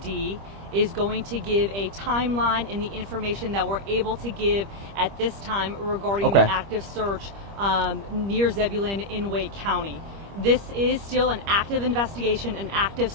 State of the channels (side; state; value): left; late; 25 ms